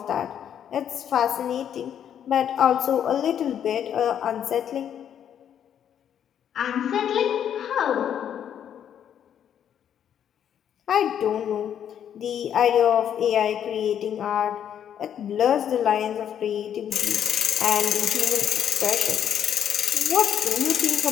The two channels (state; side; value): quieter; right; 9.3 dB